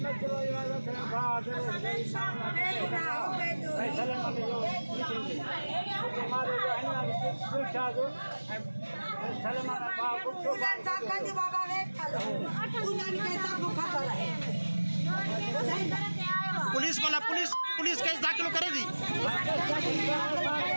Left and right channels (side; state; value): both; inverted; correlation -1.00